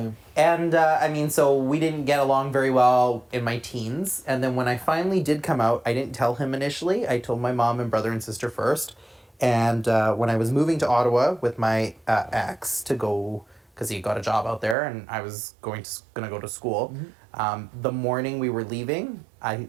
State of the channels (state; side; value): drops out; left; at 14.8 s